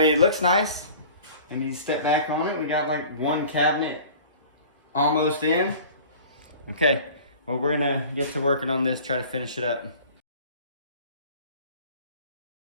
it looks nice. I mean, step back on it, we got like one cabinet almost in. Okay, well, we're gonna get to working on this, try to finish it up.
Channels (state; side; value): inverted; both; correlation -0.44